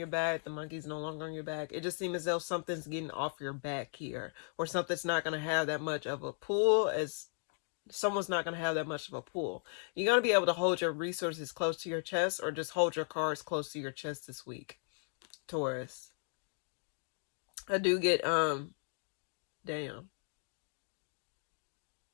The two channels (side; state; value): right; silent; 53 dB below the other